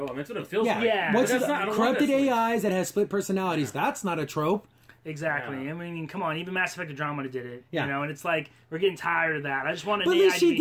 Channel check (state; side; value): identical; both; correlation 1.00